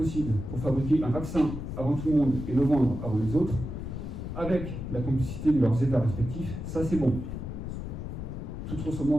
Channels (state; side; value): noise; left; rumble, 6 dB below the sound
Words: pour fabriquer un vaccin avant tout le monde et le vendre avant les autres, avec la complicité de leurs États respectifs, ça c'est bon. Toute